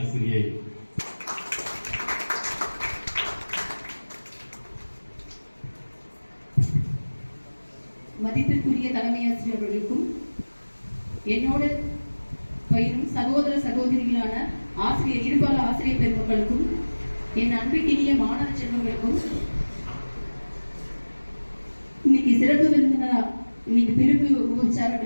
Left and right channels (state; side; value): inverted; both; correlation -1.00